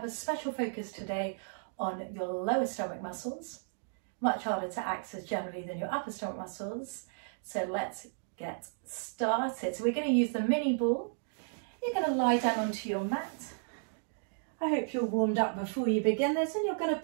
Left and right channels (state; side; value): silent; left; digital silence